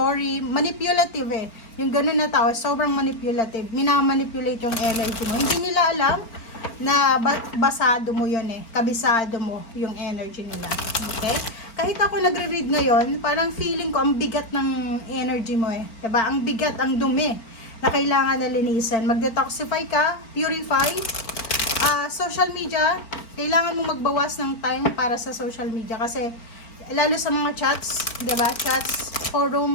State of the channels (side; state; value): right; late; 4.4 ms